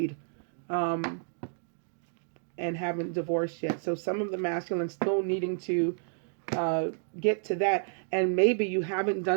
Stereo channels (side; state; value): left; silent; digital silence